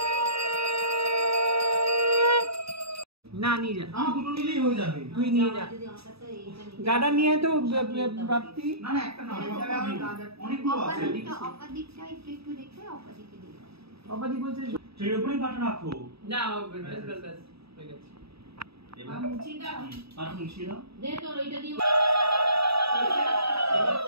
না নিয়ে যা আমার দুটো নিলেই হয়ে যাবে তুই নিয়ে যা গাডা নিয়ে তো প্রাপ্তি না না একটা না অনেকগুলো আছে অপাদিকটা একটু দেখে অপাদিকে দিই অপাদি বলছে সেই উপরেই পাটা রাখো না বাস হয়ে গেছে এবার মুছিটা আর মুছিটা দে তো ওইটা দিয়ে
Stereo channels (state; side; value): late; left; 0.77 ms